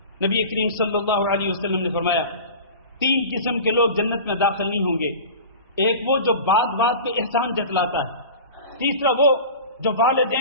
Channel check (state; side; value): inverted; both; correlation -0.36